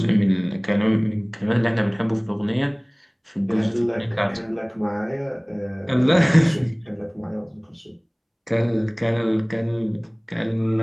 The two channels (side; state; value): both; identical; correlation 1.00